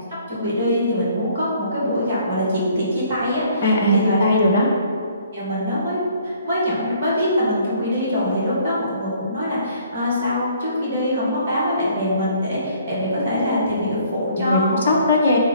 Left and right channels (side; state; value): both; inverted; correlation -0.60